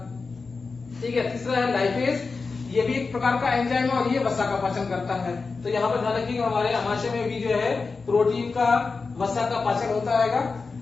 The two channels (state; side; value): quieter; right; 4.4 dB